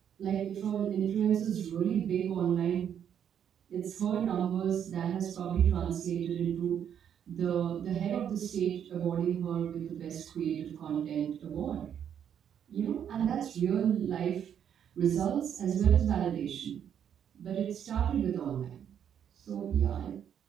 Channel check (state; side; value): quieter; left; 8.9 dB